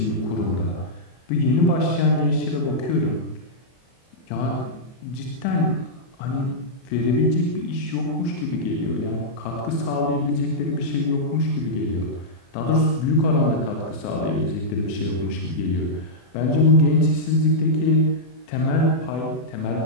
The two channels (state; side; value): late; right; 24 ms